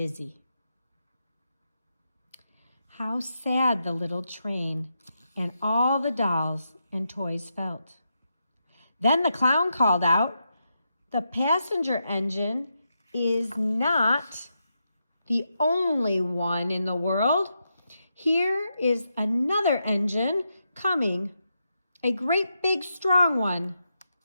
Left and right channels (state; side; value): inverted; both; correlation -0.84